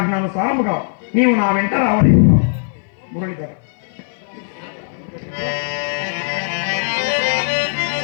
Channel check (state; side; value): silent; right; 58 dB below the other